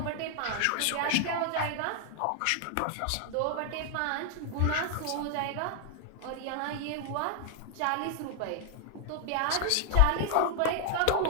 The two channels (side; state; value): both; different; correlation 0.00